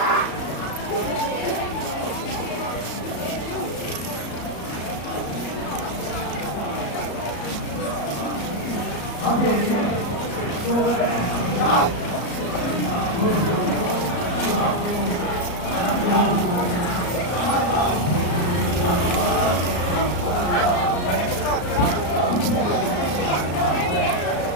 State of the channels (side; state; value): right; late; 34 ms